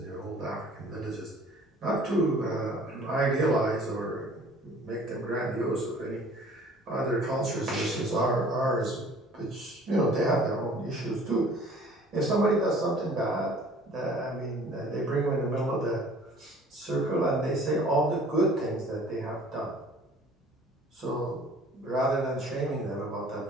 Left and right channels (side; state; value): both; normal; correlation 0.51